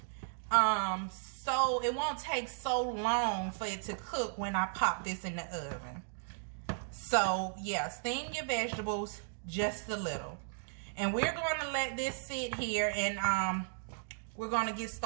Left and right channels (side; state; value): left; silent; digital silence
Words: so it won't take so long for it to cook when I pop this in the oven. So yeah, steam your vegetables just a little. And we're going to let this sit here, and we're going to get